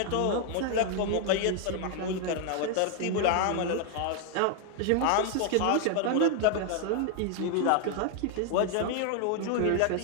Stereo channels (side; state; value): both; different; correlation 0.00